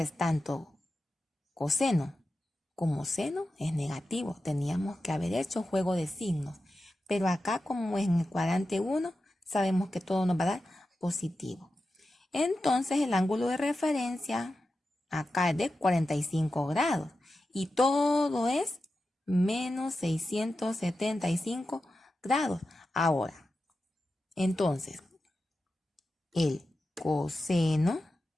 tanto coseno como seno, es negativo. Teníamos que haber hecho juego de signos. Pero acá, como es en el cuadrante 1, sabemos que todo nos va a dar positivo. Entonces, el ángulo de referencia Acá es de 45 grados. Y todo es menos 675 grados. Ahora, entonces, el coseno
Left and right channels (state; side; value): normal; both; correlation 0.92